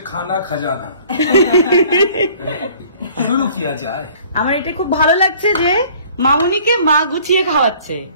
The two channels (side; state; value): both; inverted; correlation -0.52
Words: খানা খাজানা। শুরু কিয়া যায়। আমার এটা খুব ভালো লাগছে যে মামুনিকে মা গুছিয়ে খাওয়াচ্ছে,